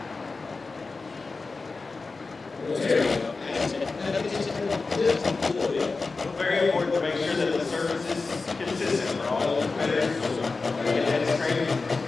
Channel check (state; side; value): quieter; right; 4.0 dB